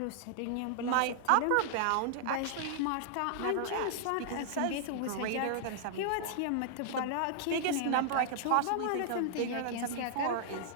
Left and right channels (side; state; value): both; different; correlation -0.01